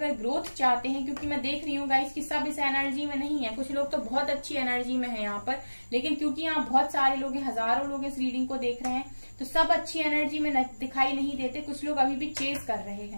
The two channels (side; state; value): both; inverted; correlation -1.00